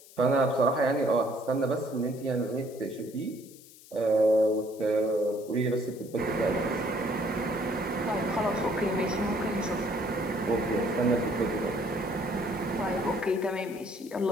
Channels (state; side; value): noise; left; hiss, 21 dB below the sound